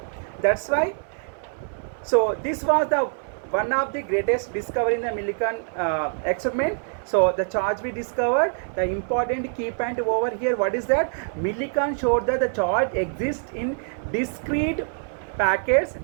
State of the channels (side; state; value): left; silent; 58 dB below the other